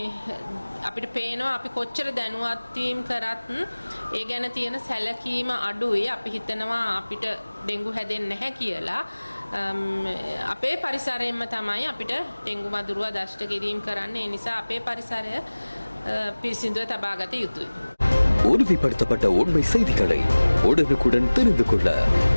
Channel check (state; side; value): inverted; both; correlation -1.00